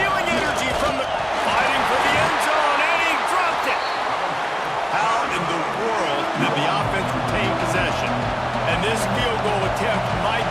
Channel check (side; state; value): both; identical; correlation 1.00